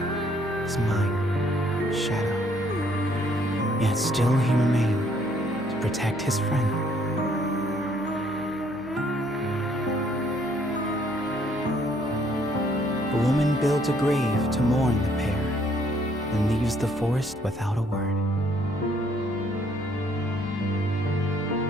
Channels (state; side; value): noise; left; hum, 24 dB below the sound